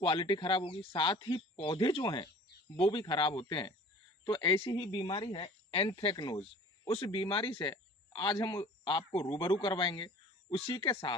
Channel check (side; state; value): both; normal; correlation 0.45